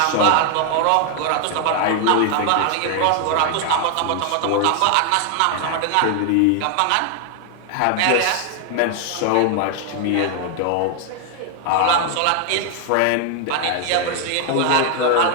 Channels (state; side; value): different; both; correlation 0.00